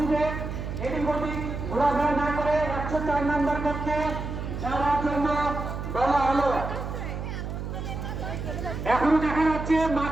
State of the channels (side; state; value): right; noise; hum, 5 dB below the sound